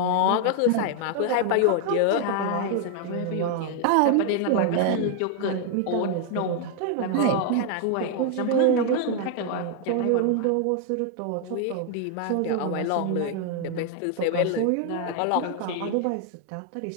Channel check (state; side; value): different; both; correlation 0.00